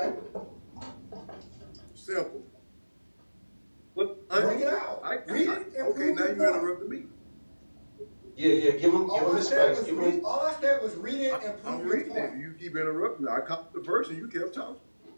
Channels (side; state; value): both; inverted; correlation -1.00